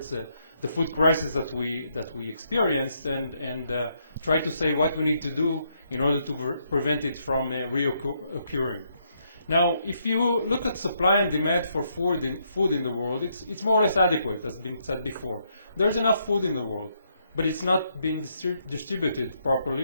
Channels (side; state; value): both; inverted; correlation -0.75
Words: the food crisis that we experienced and try to say what we need to do in order to prevent it from reoccurring. Now, if you look at supply and demand for food in the world, it's more or less adequate, as has been said before. There's enough food in the world, but it's not being distributed